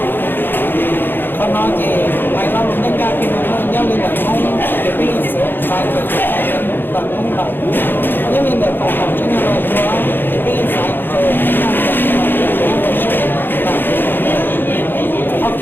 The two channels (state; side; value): late; right; 0.098 ms